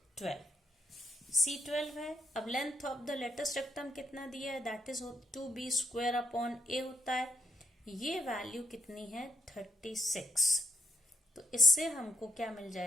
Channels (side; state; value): both; normal; correlation 0.76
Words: 12, c 12 है। अब length of the latus rectum कितना दिया है, that is 2b square upon a होता है, ये वैल्यू कितनी है 36, तो इससे हमको क्या मिल